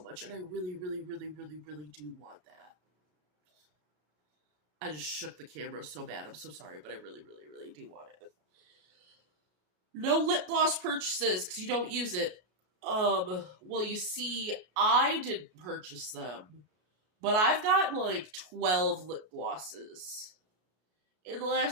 much. And I really, really, really, really, really do want that. I just shook the camera so bad. I'm so sorry, but I really, really, really do want it. No lip gloss purchases because you don't use it. Well, you see, I didn't purchase them. But I've gotten like 12 lip glosses in the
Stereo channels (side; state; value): left; late; 33 ms